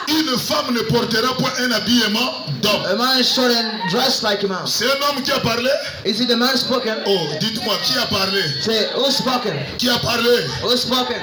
une femme ne portera point un habillement d'homme. a man shouldn't dress like a man. C'est un homme qui a parlé. Is it the man spoken? Oh, dites-moi, qui a parlé? Say, who spoken? Qui a parlé? Who spoken?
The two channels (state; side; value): identical; both; correlation 1.00